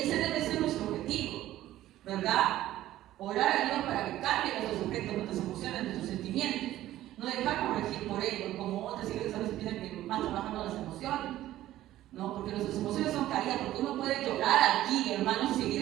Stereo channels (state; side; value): quieter; left; 14.2 dB